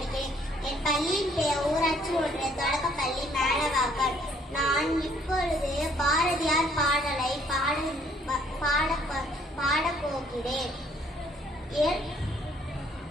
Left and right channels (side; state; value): both; normal; correlation 0.63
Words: என் பள்ளியின் பெயர் ஊராட்சி ஒன்றிய தொடக்கப்பள்ளி மேலவாக்கம். நான் இப்பொழுது பாரதியார் பாடலை பாடப்போகிறேன்.